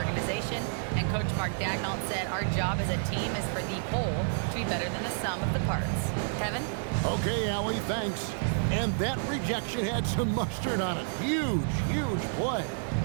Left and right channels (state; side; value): silent; left; digital silence